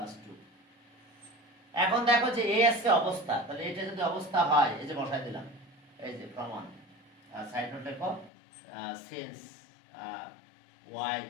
2 এখন দেখো যে a আছে অবস্থা তাহলে এটা যদি অবস্থা হয় এই যে বসাই দিলাম এই যে প্রমাণ সাইড নোট লেখো since y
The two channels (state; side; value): drops out; right; at 8.3 s